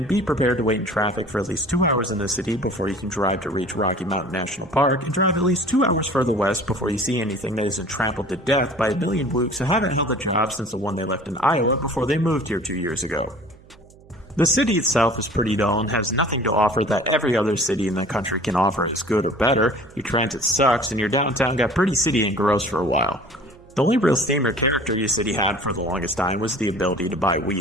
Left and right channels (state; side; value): noise; right; hum, 25 dB below the sound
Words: be prepared to wait in traffic for at least 2 hours in the city before you can drive to reach Rocky Mountain National Park, and drive at least 2 hours further west before you see anything that isn't trampled to death by a million blokes who haven't held a job since the one they left in Iowa before they moved here 2 years ago. The city itself is pretty dull and has nothing to offer that every other city in the country can offer as good or better. Your transit sucks, and your downtown got pretty city and gross for a while. The only real theme or character your city had for the longest time was the ability to buy